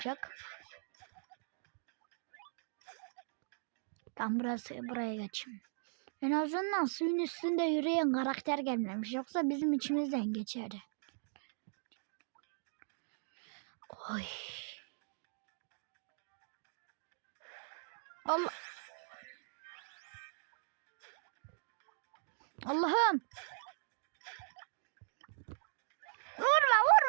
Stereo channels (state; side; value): silent; left; digital silence